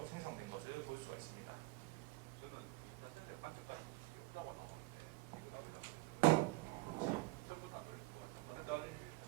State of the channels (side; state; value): left; quieter; 21.5 dB